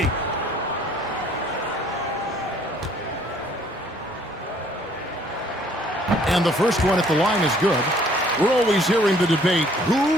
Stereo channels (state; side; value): normal; both; correlation 0.60